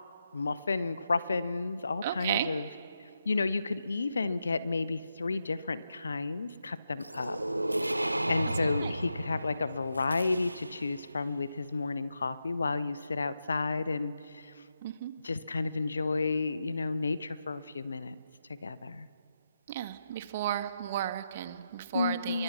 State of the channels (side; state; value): both; inverted; correlation -0.85